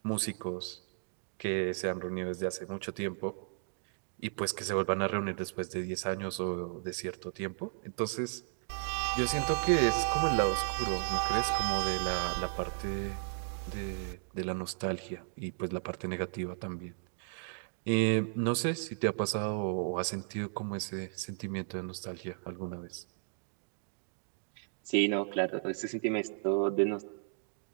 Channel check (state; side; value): silent; left; digital silence